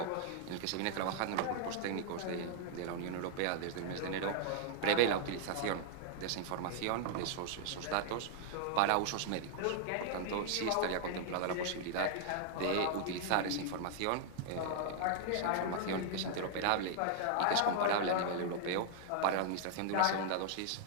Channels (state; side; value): different; both; correlation -0.01